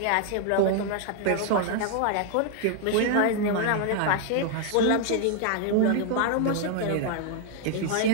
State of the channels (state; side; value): different; both; correlation 0.00